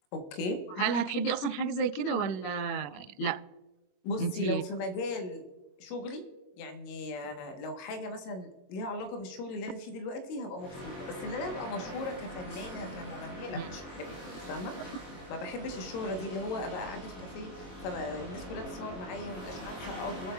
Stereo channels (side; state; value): right; late; 22 ms